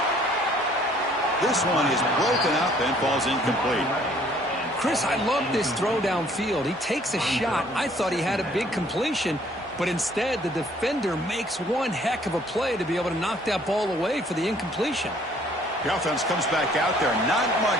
This one is broken up and falls incomplete. Chris, I love this throw downfield. He takes a shot. I thought he had a big completion, but instead the defender makes one heck of a play to be able to knock that ball away for the incompletion. The offense comes back out there. Not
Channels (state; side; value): normal; both; correlation 0.60